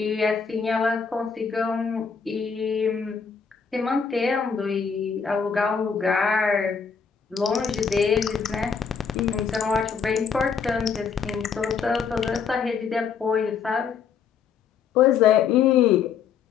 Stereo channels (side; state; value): right; quieter; 6.3 dB